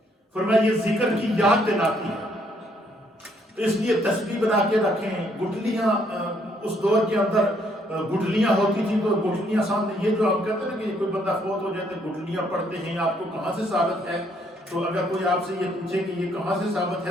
فرمایا یہ ذکر کی یاد دلاتی ہے، تو اس لیے تسبیح بنا کے رکھیں۔ گٹھلیاں اس دور کے اندر گٹھلیاں ہوتی تھیں تو گٹھلیاں سامنے، یہ جو ہم کہتے ہیں نا کہ کوئی بندہ فوت ہو جاتے گٹھلیاں پڑھتے ہیں، آپ کو کہاں سے ثابت ہے؟ تو اگر کوئی آپ سے یہ پوچھے کہ یہ کہاں سے ثابت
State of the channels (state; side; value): normal; both; correlation 0.69